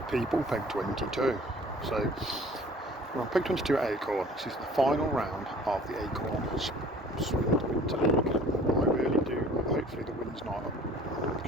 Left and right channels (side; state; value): both; normal; correlation 0.50